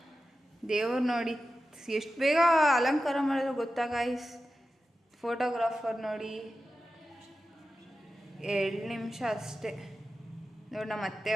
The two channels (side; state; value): both; normal; correlation 0.93